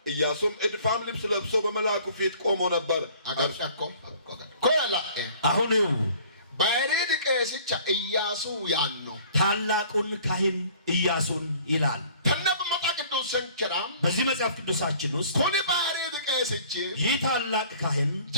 ኢያሱም እድፋም ልብስ ለብሶ በመልአኩ ፊት ቆሞ ነበር አጋርጫኮ ኮላ አሁን ባይሪድ ቀስቻ ኢያሱ ያኖ ታላቁን ካህን ኢያሱን ይላል ተነብ መጣ ቅዱስ ሰንከራም በዚህ መጽሐፍ ቅዱሳችን ውስጥ ኮኒ ባይሪድ ቀስቺ ይህ ታላቅ ካህን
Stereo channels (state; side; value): inverted; both; correlation -0.52